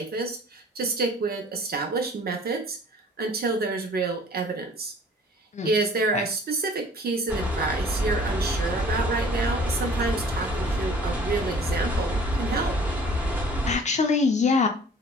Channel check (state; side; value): normal; both; correlation 0.51